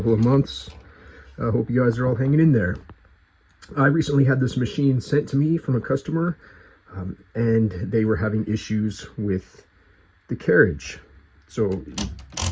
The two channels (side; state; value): both; identical; correlation 1.00